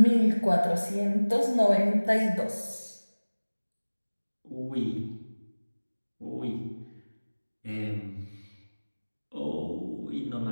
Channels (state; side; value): inverted; both; correlation -1.00